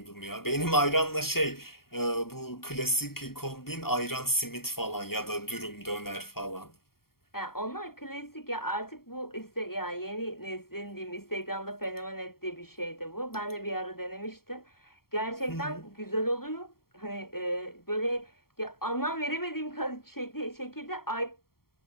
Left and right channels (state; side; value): late; right; 0.94 ms